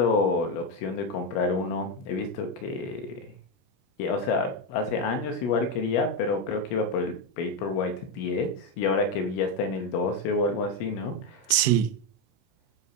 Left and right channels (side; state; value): right; late; 17 ms